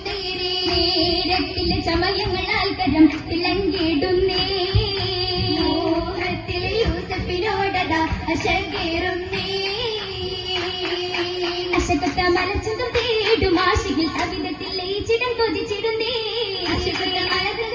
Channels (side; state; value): both; identical; correlation 1.00